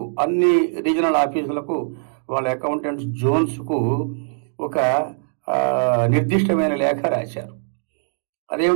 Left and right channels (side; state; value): left; silent; digital silence